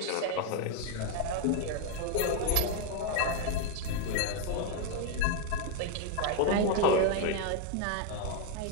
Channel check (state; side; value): different; both; correlation 0.01